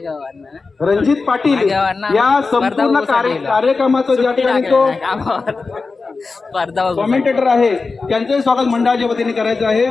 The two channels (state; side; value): quieter; right; 4.1 dB